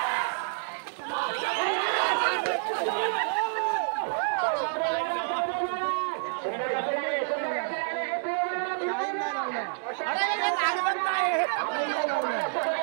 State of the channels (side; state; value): left; silent; digital silence